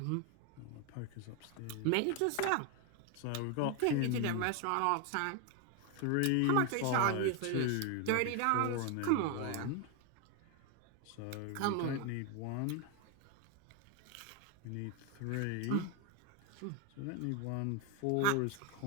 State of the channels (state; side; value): different; both; correlation 0.01